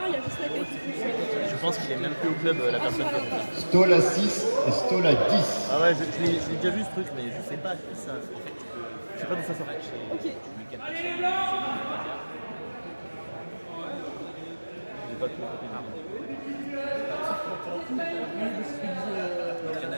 il y a juste la tête qui touche. Je pense qu'il est même plus au club, la personne qui a fait ça. Stoll à 6 et Stoll à 10. Ah ouais, je l'ai déjà vu ce truc, mais je sais pas qui ça. Je sais pas d'où ça sort. Ok. J'ai pas tout compris. Il y en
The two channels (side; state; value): both; inverted; correlation -1.00